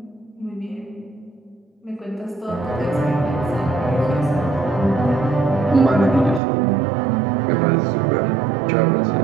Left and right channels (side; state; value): left; drops out; at 6.4 s